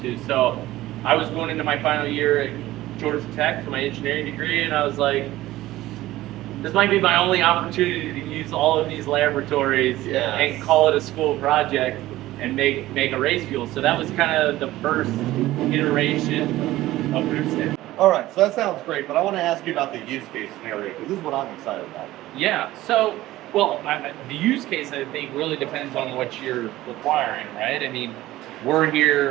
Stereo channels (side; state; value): left; quieter; 16.2 dB